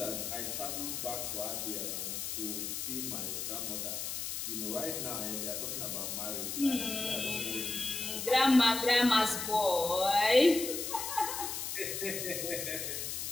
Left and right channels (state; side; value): noise; left; hiss, 4 dB below the sound